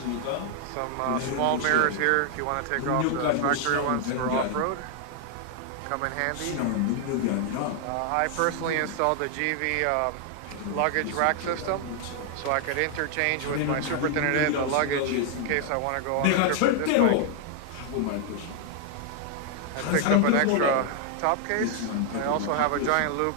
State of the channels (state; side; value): different; both; correlation 0.00